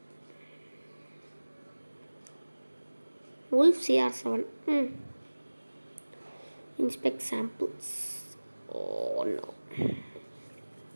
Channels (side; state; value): both; inverted; correlation -1.00